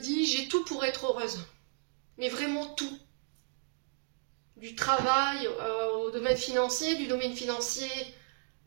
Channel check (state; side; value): silent; left; digital silence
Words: j'ai tout pour être heureuse. Mais vraiment tout. Du travail au domaine financier, du domaine financier